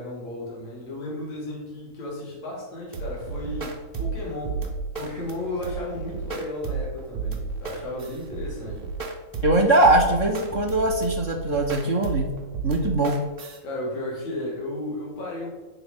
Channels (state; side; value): late; right; 3.7 ms